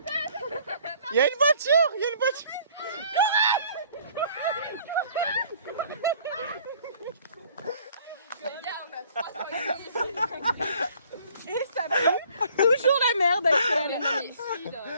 Il y a une voiture. Et ça pue toujours la merde, Axel.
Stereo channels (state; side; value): inverted; both; correlation -0.57